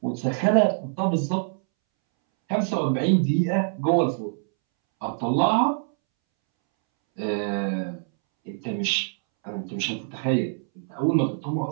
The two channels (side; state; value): left; silent; 62 dB below the other